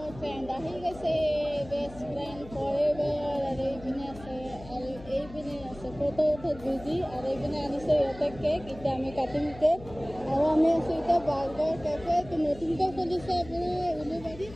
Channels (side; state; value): left; noise; hum, 17 dB below the sound